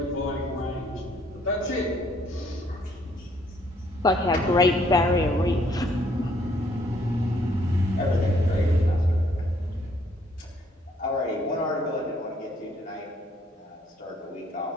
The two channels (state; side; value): normal; both; correlation 0.66